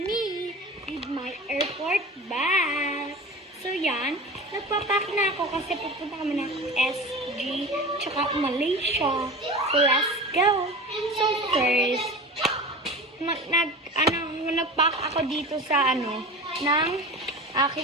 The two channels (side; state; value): both; normal; correlation 0.33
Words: with my airport bag. So yan, nagpapack na ako kasi pupunta kami ng SG tsaka Malaysia. So let's go. So first, nagpack ako dito sa ng